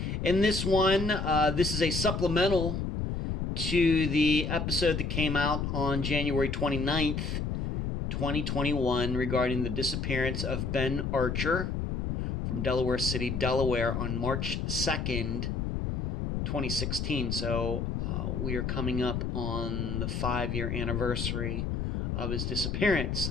In this one, this is a supplemental to the episode that came out on January 29th, 2021, regarding the disappearance of Ben Archer from Delaware City, Delaware, on March 2nd, 2016. So we are coming up on the 5-year anniversary of his disappearance.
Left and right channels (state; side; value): noise; left; rumble, 2 dB below the sound